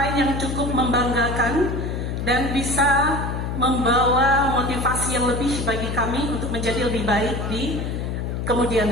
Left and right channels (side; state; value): left; noise; hum, 3 dB below the sound